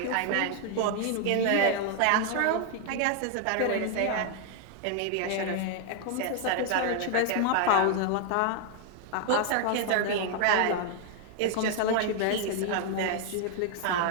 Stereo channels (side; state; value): both; different; correlation 0.00